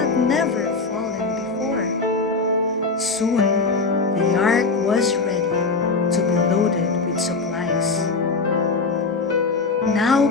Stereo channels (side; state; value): right; quieter; 4.0 dB